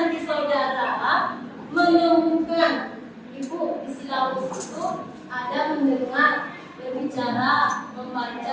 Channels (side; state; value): both; identical; correlation 1.00